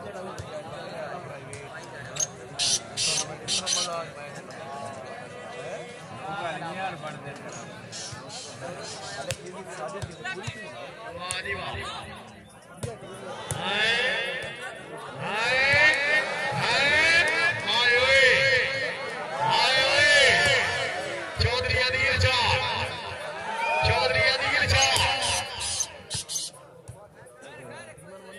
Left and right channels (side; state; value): both; identical; correlation 1.00